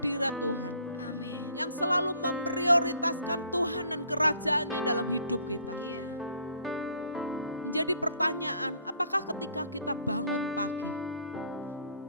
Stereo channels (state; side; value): inverted; both; correlation -0.60